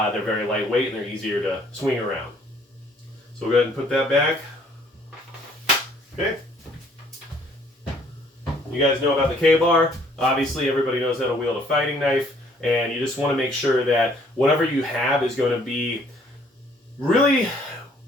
very lightweight and they're easier to swing around. So we'll go ahead and put that back. Okay. You guys know about the K-bar. Obviously everybody knows how to wield a fighting knife. And you just want to make sure that whatever you have is going to be really,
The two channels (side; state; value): both; normal; correlation 0.61